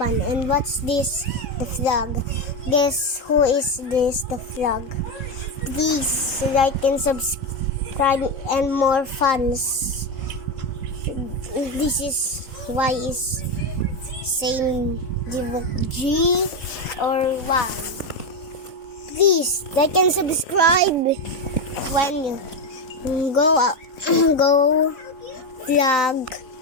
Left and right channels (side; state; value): right; late; 3.7 ms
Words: what's this? The flag. Guess who is this? The flag. Please like and subscribe and more fans. This is why is same G or Y. Please like and subscribe when you go go flag